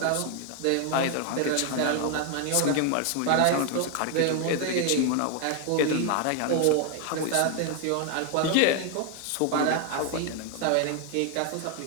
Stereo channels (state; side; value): different; both; correlation 0.01